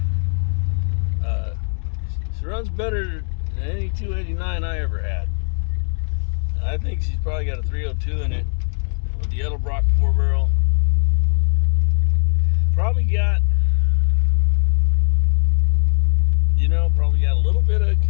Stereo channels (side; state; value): right; silent; digital silence